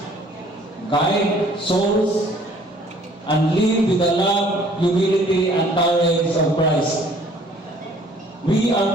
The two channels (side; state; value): both; normal; correlation 0.57